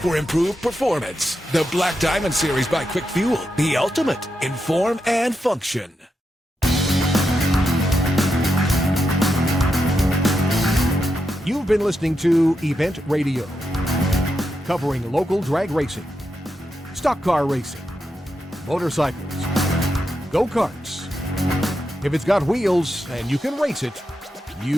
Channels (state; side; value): normal; both; correlation 0.86